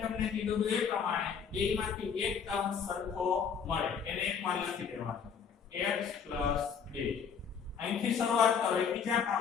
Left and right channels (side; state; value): right; quieter; 6.7 dB